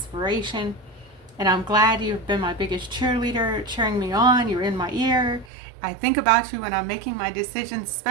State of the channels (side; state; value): left; drops out; at 5.5 s